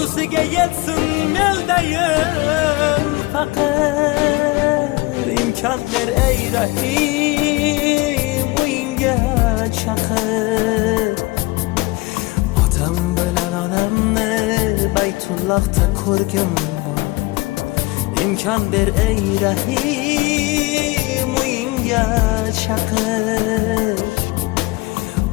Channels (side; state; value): right; quieter; 22.4 dB